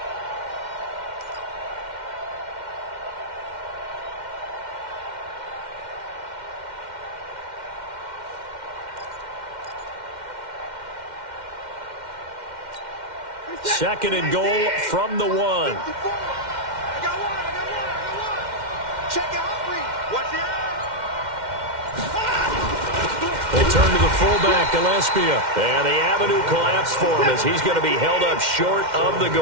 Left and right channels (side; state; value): left; late; 2.1 ms